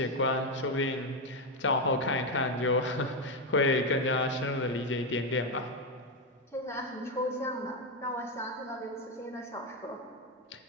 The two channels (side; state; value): both; normal; correlation 0.08